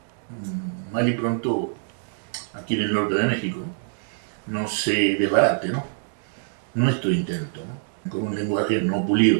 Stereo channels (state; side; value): silent; left; digital silence